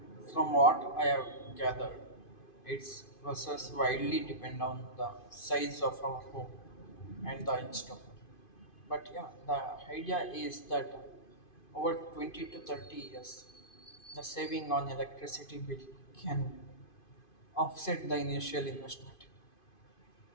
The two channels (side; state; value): right; late; 2.5 ms